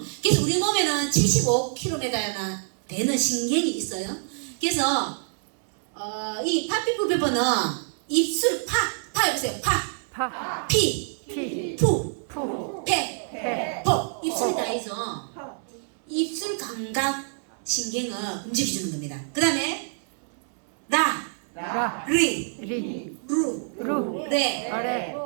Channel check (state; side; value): silent; left; digital silence